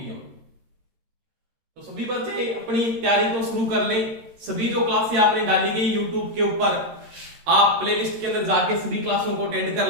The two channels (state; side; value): late; left; 13 ms